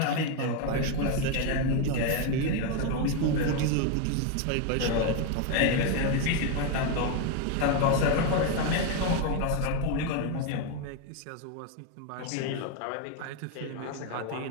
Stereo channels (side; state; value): both; different; correlation 0.01